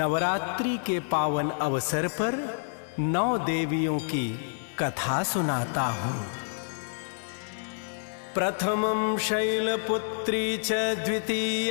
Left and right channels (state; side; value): silent; right; 59 dB below the other